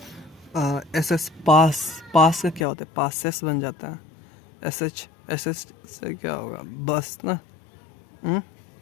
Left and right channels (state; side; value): drops out; right; at 2.7 s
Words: एस एस पास, पास का क्या होता है? पासेस बन जाता है। एस एच, एस एच से क्या होगा? बस ना।